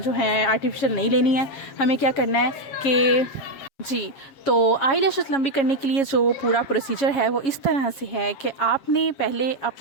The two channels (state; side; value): late; right; 7.3 ms